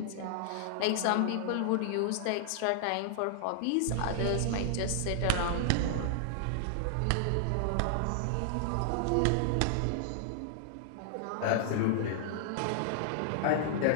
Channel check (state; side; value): different; both; correlation -0.01